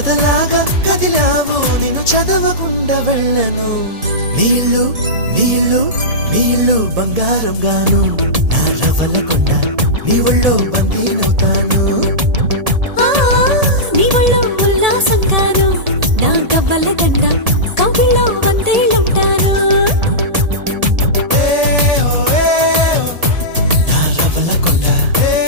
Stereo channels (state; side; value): late; left; 1.7 ms